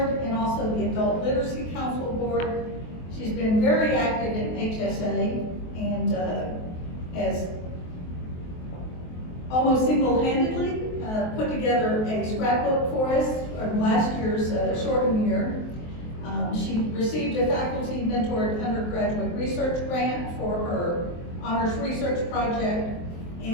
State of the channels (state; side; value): late; right; 23 ms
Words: and also the Adult Literacy Council board. She's been very active in HSA and has almost single-handedly put together a scrapbook for us from last year's shortened year. She received a faculty mentored undergraduate research grant for her honors research project,